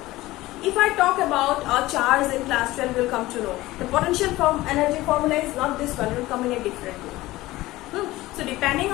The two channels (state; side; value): quieter; right; 17.9 dB